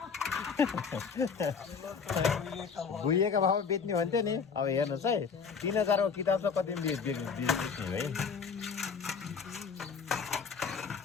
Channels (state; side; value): quieter; right; 5.9 dB